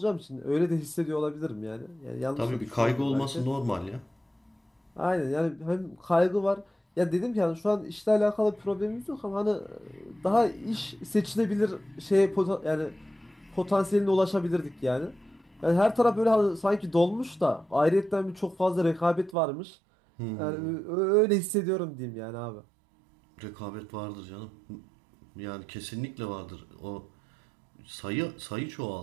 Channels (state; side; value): drops out; left; at 19.4 s